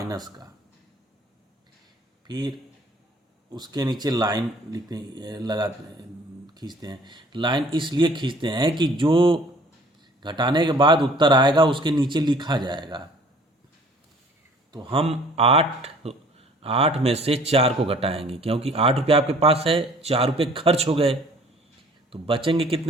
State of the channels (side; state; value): both; normal; correlation 0.54